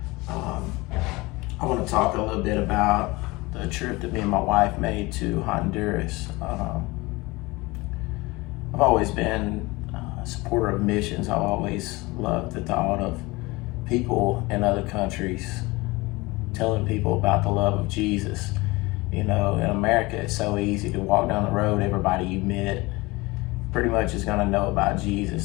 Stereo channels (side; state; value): right; quieter; 22.6 dB